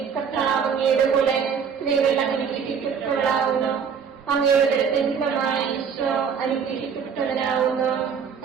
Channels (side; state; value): left; quieter; 6.7 dB